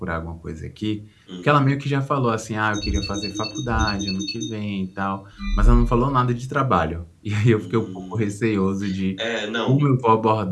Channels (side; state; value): both; identical; correlation 1.00